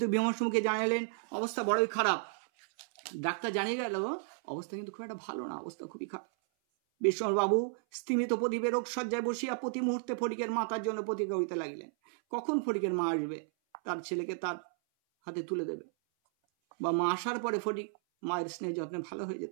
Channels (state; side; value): silent; left; 55 dB below the other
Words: বিমর্ষ মুখে জানালেন, অবস্থা বড়ই খারাপ। ডাক্তার জানিয়ে গেল অবস্থা কিন্তু খুব একটা ভালো না, অবস্থা খুবই খারাপ। বিশ্বম্বরবাবু স্তিমিত প্রদীপে রোগ সজ্জায় বসিয়া প্রতি মুহূর্তে ফটিকের মাতার জন্য প্রতীক্ষা করিতে লাগিলেন। কখন ফটিকের মা আসবে, তার ছেলেকে তার হাতে তুলে দেবে, বা মা আসার পরে ফটিক মায়ের স্নেহ যত্নে ভালো হয়ে